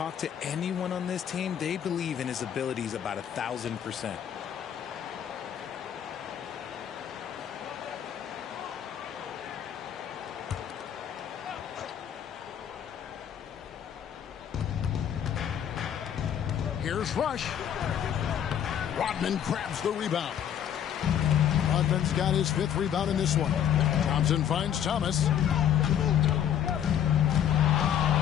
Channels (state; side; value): quieter; right; 9.5 dB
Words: to anyone on this team, they believe in his abilities about 1,000%. Here's Rush. Rodman grabs the rebound. Rodman's got his 5th rebound in this one. Thompson finds Thomas. The